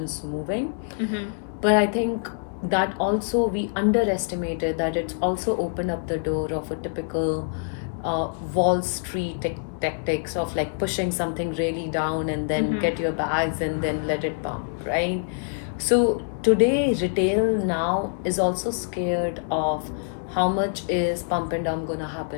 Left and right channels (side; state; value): right; silent; digital silence